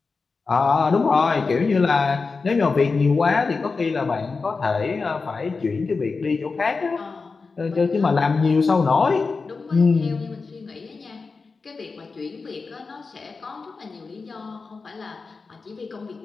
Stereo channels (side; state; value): right; quieter; 4.4 dB